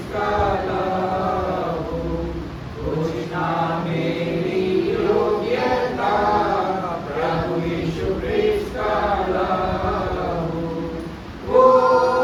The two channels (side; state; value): both; identical; correlation 1.00